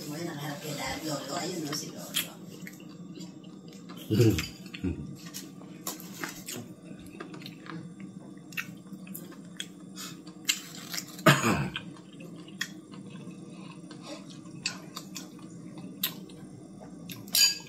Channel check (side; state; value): both; identical; correlation 1.00